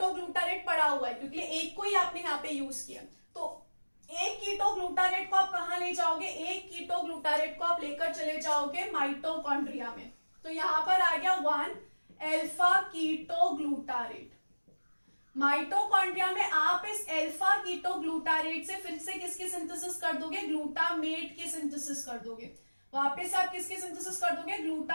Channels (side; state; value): both; inverted; correlation -1.00